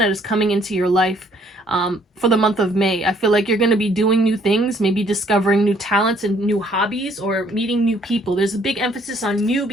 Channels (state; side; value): normal; both; correlation 0.63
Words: is coming into your life. For the month of May. I feel like you're going to be doing new things, maybe discovering new talents and new hobbies, or meeting new people. There's a big emphasis on new